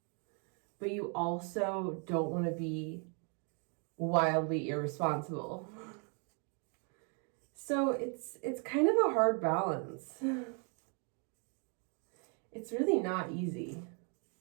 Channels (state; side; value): quieter; left; 38.2 dB